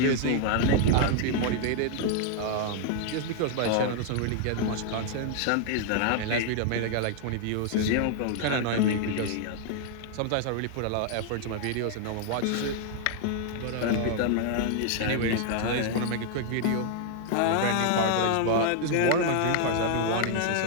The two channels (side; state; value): both; different; correlation 0.00